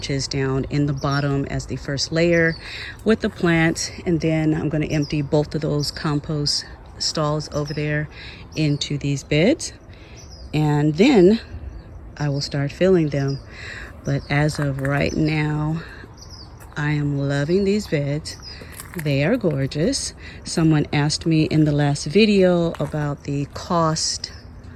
down in the bottom as the first layer with the plants. And then I'm going to empty both of those compost stalls over there into these beds. And then I will start filling them. But as of right now, I am loving these beds. They are gorgeous. Someone asked me in the last video about the cost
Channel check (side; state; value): both; identical; correlation 1.00